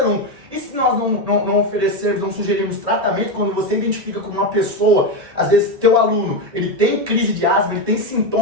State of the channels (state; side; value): late; left; 1.8 ms